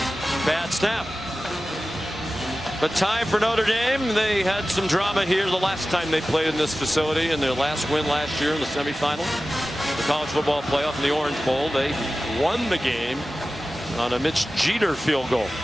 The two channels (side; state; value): both; normal; correlation 0.95